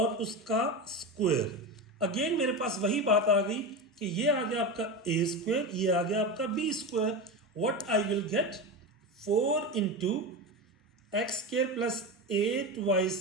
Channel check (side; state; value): both; normal; correlation 0.21